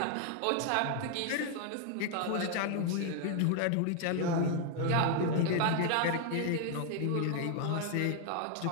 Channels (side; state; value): both; different; correlation 0.00